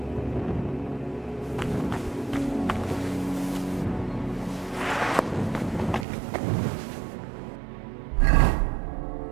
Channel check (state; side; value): drops out; left; at 6.1 s